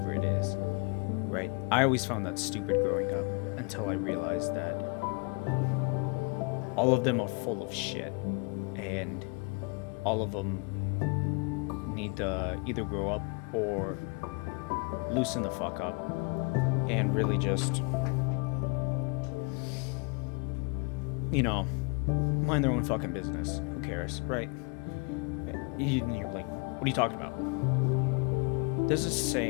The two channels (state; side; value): quieter; right; 32.7 dB